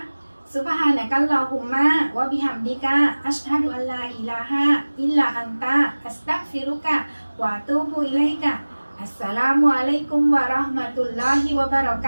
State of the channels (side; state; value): both; inverted; correlation -1.00